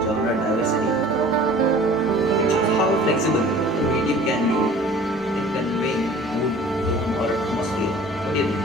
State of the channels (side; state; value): both; normal; correlation 0.47